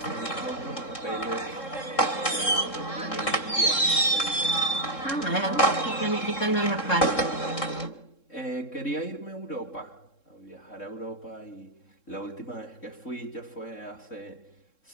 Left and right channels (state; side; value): late; right; 3.7 ms